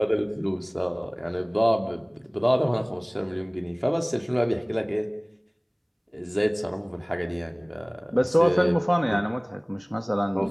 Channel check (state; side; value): identical; both; correlation 1.00